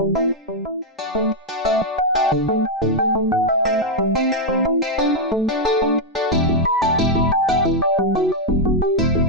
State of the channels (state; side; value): normal; both; correlation -0.01